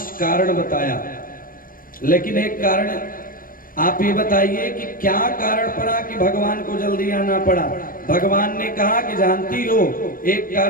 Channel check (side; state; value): right; late; 0.41 ms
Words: कारण बताया, लेकिन एक कारण आप ये बताइए कि क्या कारण पड़ा कि भगवान को जल्दी आना पड़ा। भगवान ने कहा कि जानती हो, एक